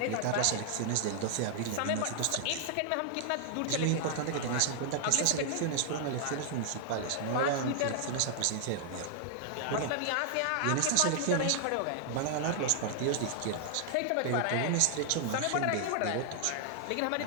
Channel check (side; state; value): both; different; correlation -0.01